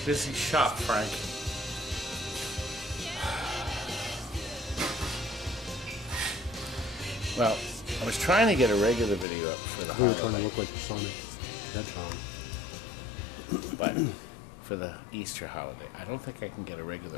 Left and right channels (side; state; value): right; drops out; at 9.2 s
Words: busy shop, Frank. Well, I was trying to get a regular video up for the We were trying to look like Sonic Hedgehog. But for the Easter holiday, I don't think I can get a